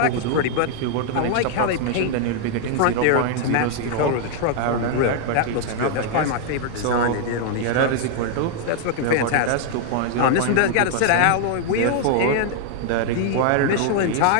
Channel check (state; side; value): different; both; correlation -0.01